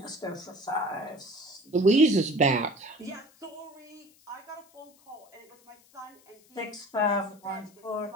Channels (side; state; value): left; noise; hiss, 29 dB below the sound